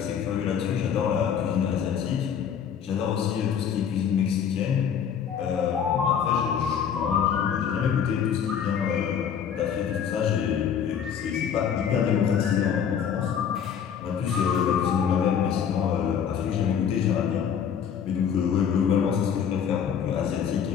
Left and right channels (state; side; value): quieter; right; 8.0 dB